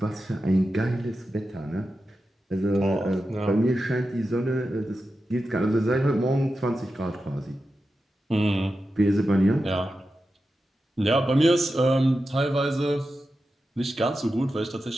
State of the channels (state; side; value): normal; both; correlation 0.91